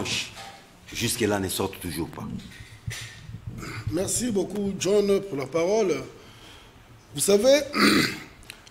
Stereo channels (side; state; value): both; identical; correlation 1.00